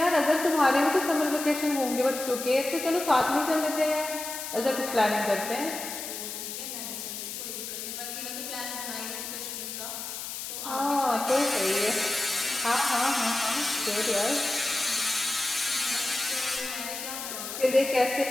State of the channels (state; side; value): noise; left; hiss, 7 dB below the sound